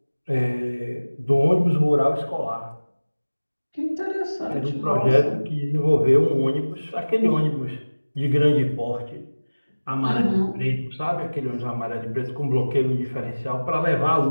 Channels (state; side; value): inverted; both; correlation -1.00